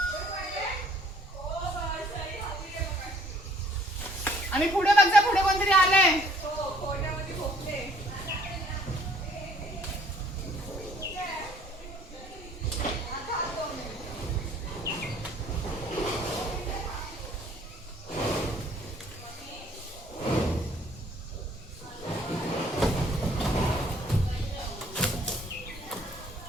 आणि पुढे बघ, पुढे कोणतरी आलंय.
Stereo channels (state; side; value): normal; both; correlation 0.60